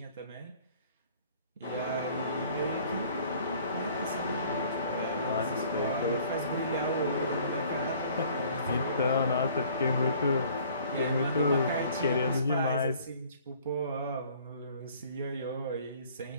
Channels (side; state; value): both; inverted; correlation -0.54